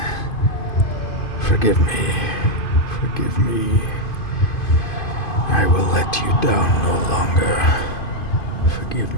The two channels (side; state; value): right; late; 2.5 ms